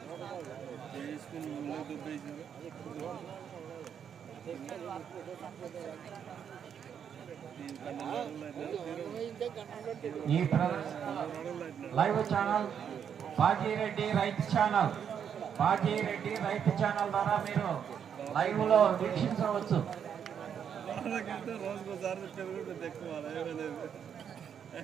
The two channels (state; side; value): quieter; left; 8.1 dB